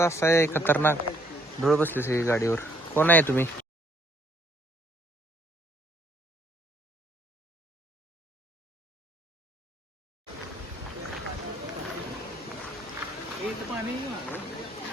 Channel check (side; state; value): both; normal; correlation 0.65